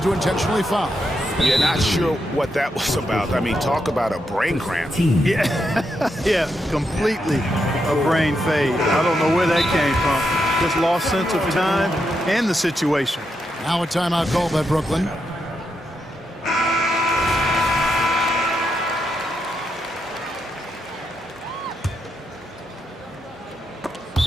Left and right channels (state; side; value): normal; both; correlation 0.83